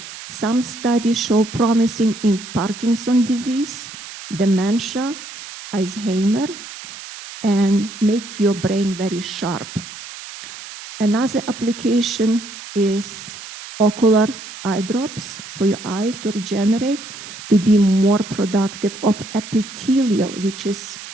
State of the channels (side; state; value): right; noise; hiss, 13 dB below the sound